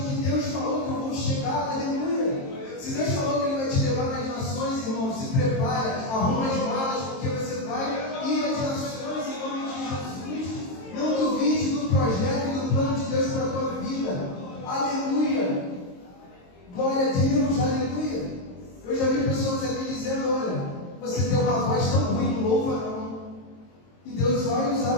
que Deus falou que eu vou chegar. Aleluia. Se Deus falou que Ele vai te levar nas nações, irmão, se prepara, arruma as malas, porque você vai ir às nações em nome de Jesus. Não duvide do projeto e do plano de Deus para a tua vida. Aleluia. Glória a Deus. Aleluia. Eu já vi pessoas aqui dizendo: olha, você tem uma voz tão ruim, não louva não. E Deus vai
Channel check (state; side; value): late; right; 22 ms